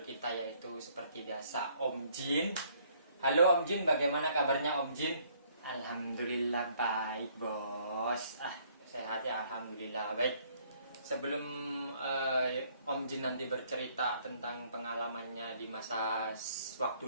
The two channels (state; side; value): inverted; both; correlation -0.64